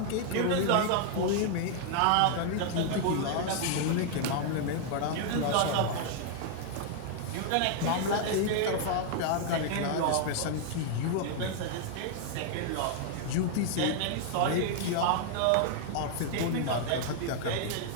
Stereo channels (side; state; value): both; different; correlation 0.00